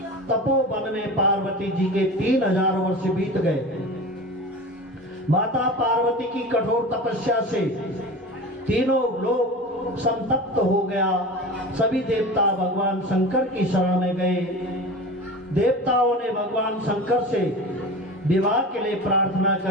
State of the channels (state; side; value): normal; both; correlation 0.32